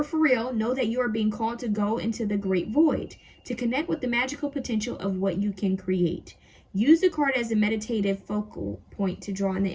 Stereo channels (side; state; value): both; identical; correlation 1.00